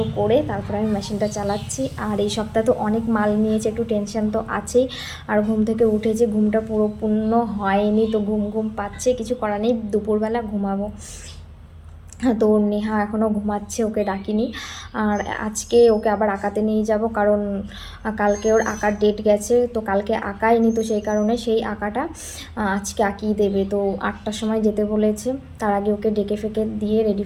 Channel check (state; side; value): identical; both; correlation 1.00